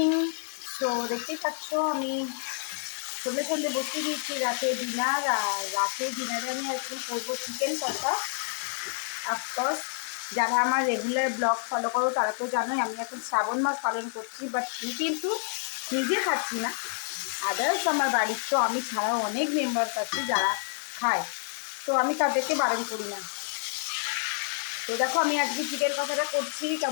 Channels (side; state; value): right; silent; digital silence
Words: So দেখতেই পাচ্ছ আমি সন্ধ্যে সন্ধ্যে বসে দিয়েছি রাতে ডিনার। আর রাতে ডিনারে আমি আজকে করবো চিকেন কষা। অফকোর্স যারা আমার রেগুলার ব্লগ ফলো করো তারা তো জানোই আমি এখন শ্রাবণ মাস পালন করছি, বাট কিন্তু নিজে খাচ্ছি না, আদার্স আমার বাড়ির তো আমি ছাড়াও অনেক মেম্বার্স আছে যারা খায়, তো আমি তাদেরকে বারণ করি না। তো দেখো আমি আজকে চিকেন কষাটা করছি,